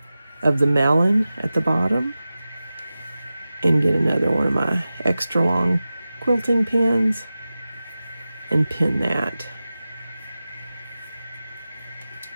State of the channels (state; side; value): inverted; both; correlation -0.95